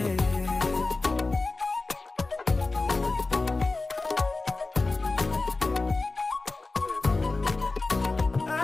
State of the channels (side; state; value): right; quieter; 3.5 dB